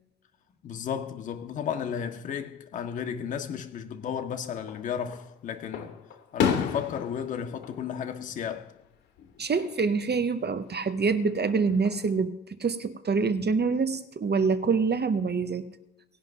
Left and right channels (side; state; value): both; normal; correlation 0.45